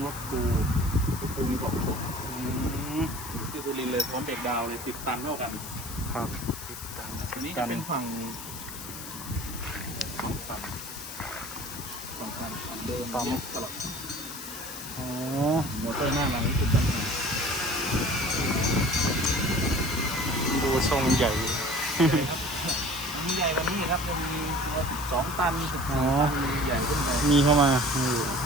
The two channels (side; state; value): left; noise; hiss, 11 dB below the sound